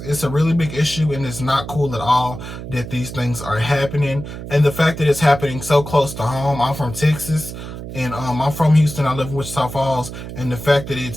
a really big issue, and it's not cool at all that these things are happening. And the fact that it's happening so close to home. I'm from Texas, and I'm from Houston. I live in Wichita Falls, and the fact that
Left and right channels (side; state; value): right; noise; hum, 10 dB below the sound